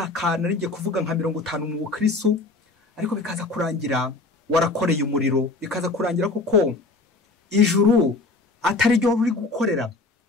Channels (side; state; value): right; quieter; 3.4 dB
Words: naringiye kuvuga nka 50 mu bukristo, ariko bikaza kurangira warakoreye umuriro, bikaza kurangira koko ijuru atari ryo uri gukorera,